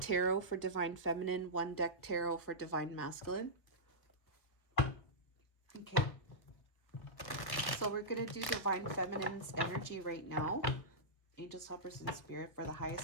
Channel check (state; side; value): late; right; 1.6 ms